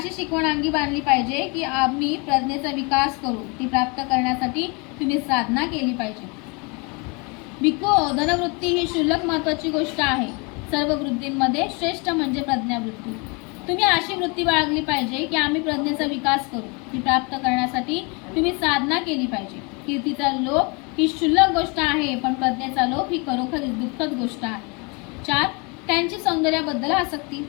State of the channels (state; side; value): quieter; right; 30.6 dB